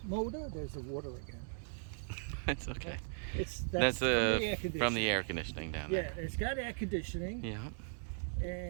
motor. There's the water again. That's okay. That's from the air conditioning down there. Yeah, it's got air conditioning. Yeah.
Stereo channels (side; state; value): left; silent; digital silence